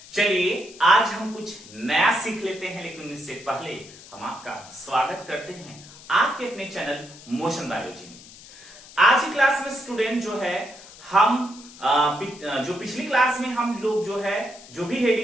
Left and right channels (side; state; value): left; noise; hiss, 19 dB below the sound